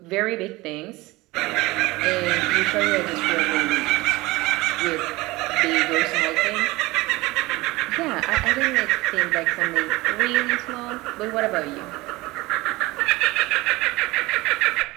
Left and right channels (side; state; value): left; quieter; 20.9 dB